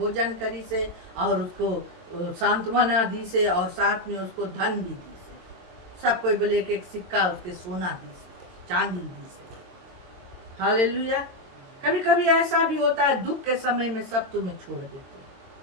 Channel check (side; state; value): left; late; 22 ms